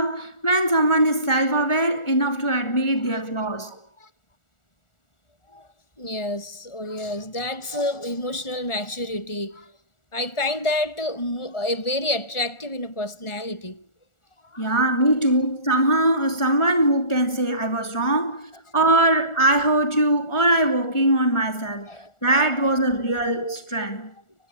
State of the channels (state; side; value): late; right; 1.4 ms